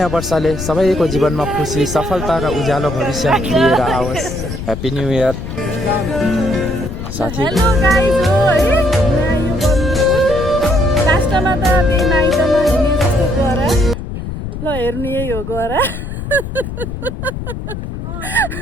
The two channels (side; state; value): left; noise; rumble, 7 dB below the sound